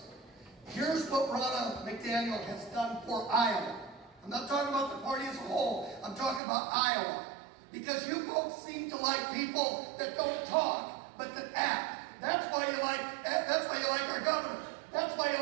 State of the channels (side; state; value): left; drops out; at 6.4 s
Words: Here's what Ronna McDaniel has done for Iowa. I'm not talking about the party as a whole. I'm talking about Iowa. Because you folks seem to like people that don't talk, but that act. That's why you like our governor. That's why you